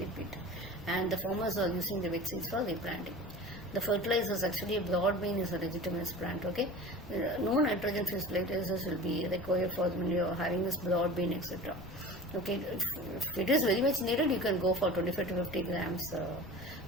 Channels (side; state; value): left; noise; rumble, 16 dB below the sound